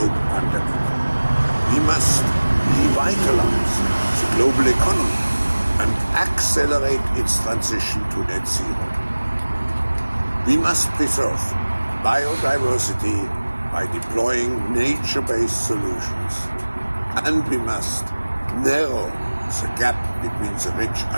pandemic. We must revitalize the global economy and accelerate its transition to net zero. We must preserve biodiversity by deploying nature-based solutions. And we must narrow the gap between the rich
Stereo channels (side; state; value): both; inverted; correlation -1.00